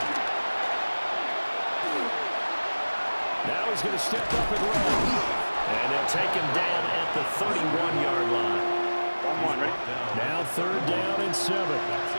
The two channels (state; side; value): inverted; both; correlation -1.00